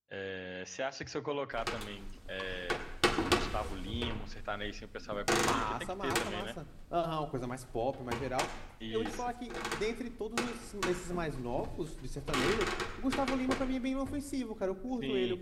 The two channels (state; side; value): identical; both; correlation 1.00